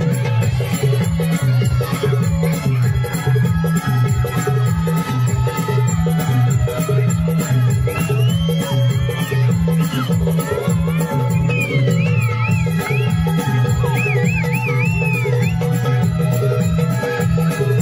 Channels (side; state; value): both; identical; correlation 1.00